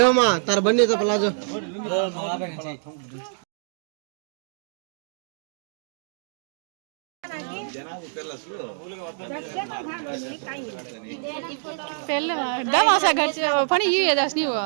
తర బన్నీ ప్లాజో పెళ్ళి దమాసా గచ్చి పని ఇవి ఏదాస్ నీవు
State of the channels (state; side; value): silent; left; digital silence